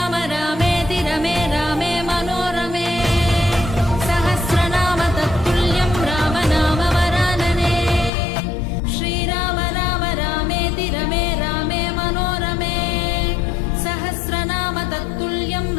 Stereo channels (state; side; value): drops out; right; at 8.1 s